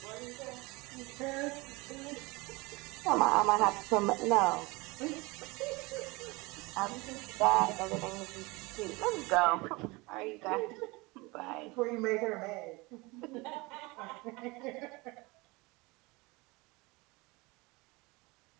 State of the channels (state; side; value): quieter; left; 24.3 dB